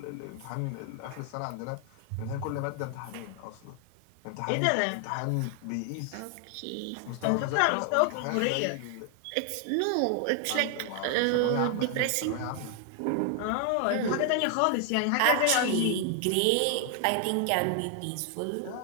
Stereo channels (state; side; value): different; both; correlation 0.00